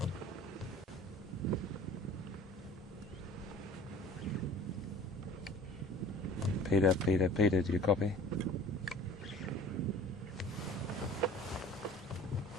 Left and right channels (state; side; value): normal; both; correlation 0.47